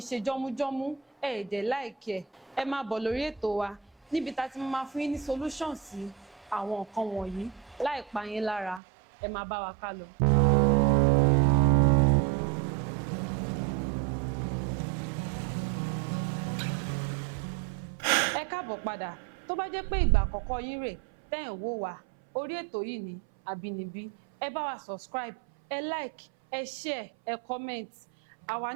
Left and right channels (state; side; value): drops out; left; at 8.8 s